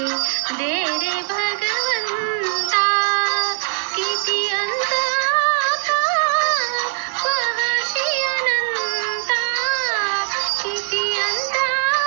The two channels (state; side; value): silent; left; 65 dB below the other